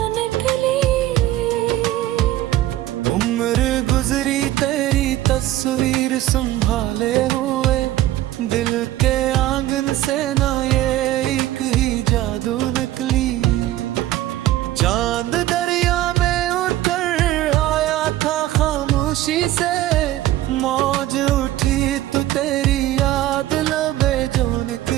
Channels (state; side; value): quieter; left; 14.6 dB